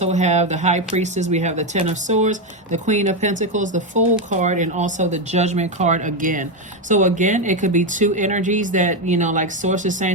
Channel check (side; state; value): both; normal; correlation 0.09